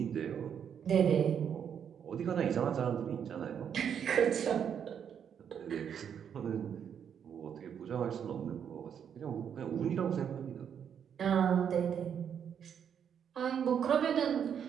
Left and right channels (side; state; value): left; quieter; 8.2 dB